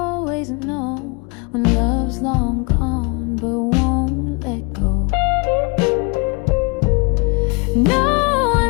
know when love's long gone but won't let go. No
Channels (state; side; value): quieter; right; 30.4 dB